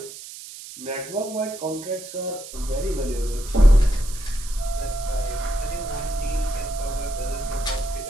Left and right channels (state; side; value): noise; right; hiss, 13 dB below the sound